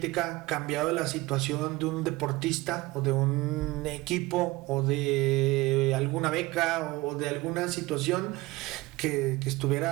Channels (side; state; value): left; quieter; 20.8 dB